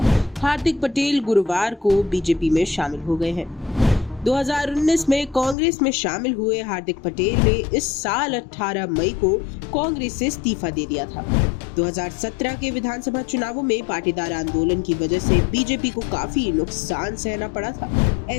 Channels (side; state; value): right; drops out; at 5.6 s